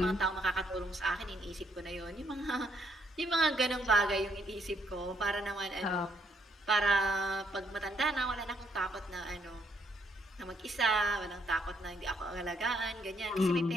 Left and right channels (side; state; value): both; normal; correlation 0.71